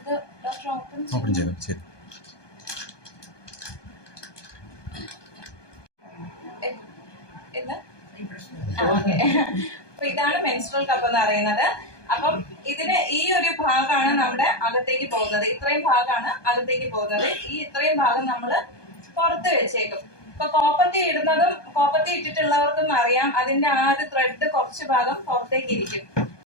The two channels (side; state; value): right; late; 1.2 ms